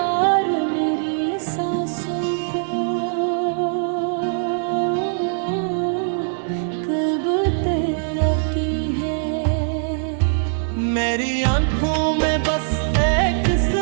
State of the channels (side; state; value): left; silent; digital silence